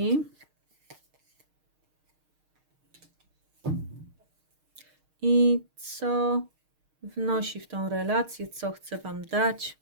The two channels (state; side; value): late; left; 6.5 ms